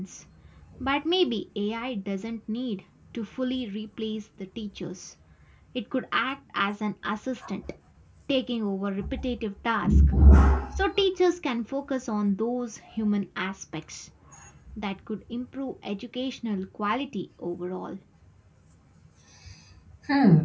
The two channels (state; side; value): identical; both; correlation 1.00